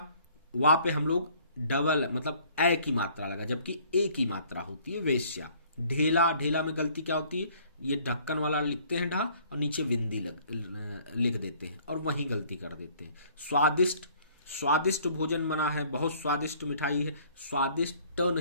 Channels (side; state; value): both; inverted; correlation -0.57